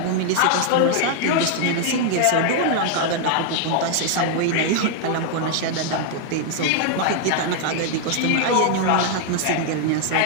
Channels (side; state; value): both; different; correlation 0.00